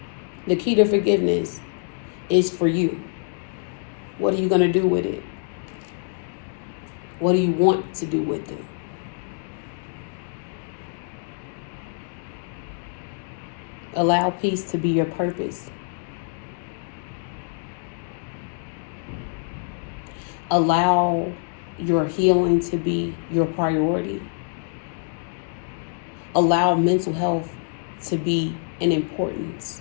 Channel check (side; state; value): right; silent; digital silence